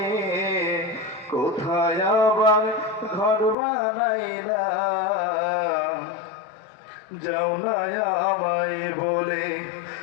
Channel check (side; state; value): right; drops out; at 3.6 s